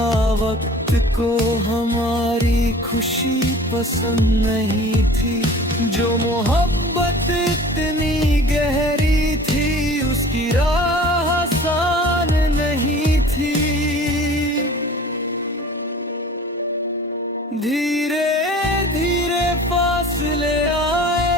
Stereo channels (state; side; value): normal; both; correlation 0.44